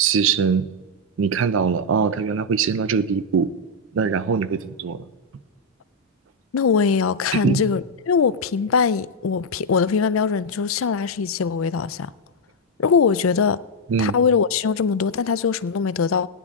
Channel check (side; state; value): both; normal; correlation -0.01